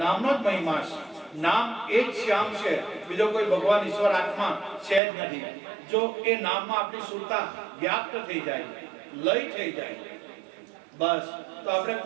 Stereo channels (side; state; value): left; drops out; at 5.0 s